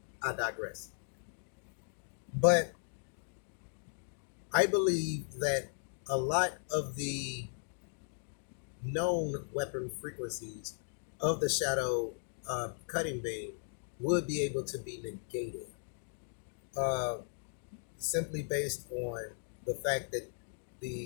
I digress. But I believe that a lot of the known weapon frequencies of the shadow cutting beam would be able to be negated, simply based on the fact that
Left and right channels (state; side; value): silent; right; digital silence